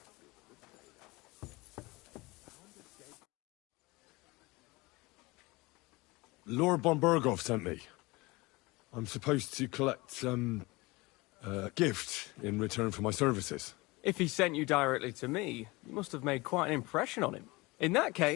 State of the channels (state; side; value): quieter; right; 23.2 dB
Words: Lord von Bergow sent me. I'm supposed to collect, a gift in return for my services. If he sent you directly to me, you must have made quite an impression on him. In that